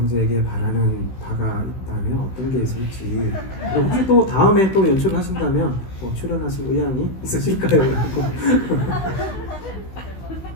바라는 바가 있다면 어떤 게 있을지 그리고 혹시 또 다음에 또 연출을 하신다면 출연하실 의향이 있으실까요?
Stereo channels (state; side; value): late; right; 16 ms